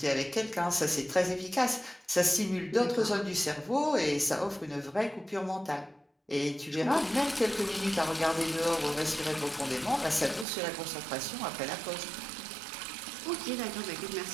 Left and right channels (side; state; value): left; drops out; at 10.5 s